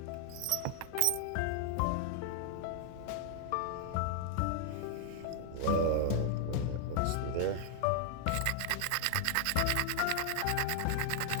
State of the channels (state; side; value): different; both; correlation -0.01